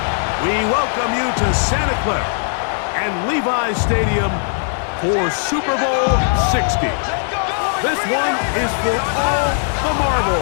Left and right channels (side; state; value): right; silent; 67 dB below the other